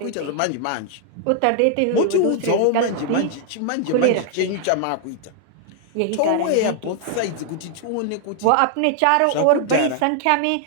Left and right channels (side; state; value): both; different; correlation 0.00